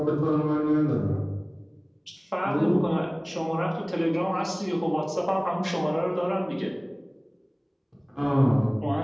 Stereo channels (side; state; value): both; identical; correlation 1.00